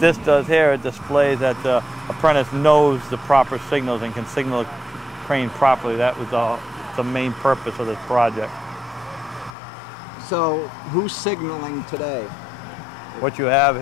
does here, it displays that the apprentice knows the proper signals and can signal the crane properly. That was the main purpose of this project. So who's signaling today? What you have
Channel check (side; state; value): right; drops out; at 9.6 s